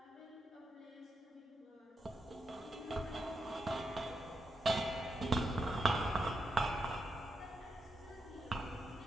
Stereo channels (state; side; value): normal; both; correlation 0.84